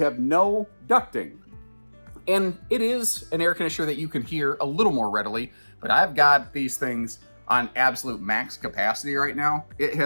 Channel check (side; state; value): both; inverted; correlation -1.00